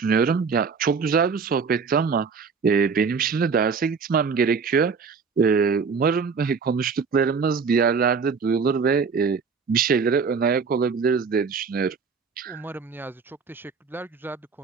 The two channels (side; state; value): left; quieter; 5.4 dB